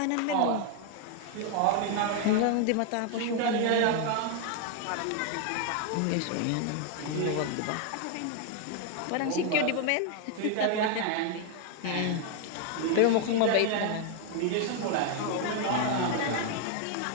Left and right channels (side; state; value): both; different; correlation 0.00